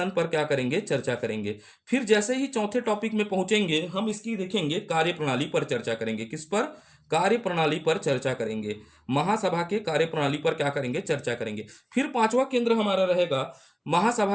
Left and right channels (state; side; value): identical; both; correlation 1.00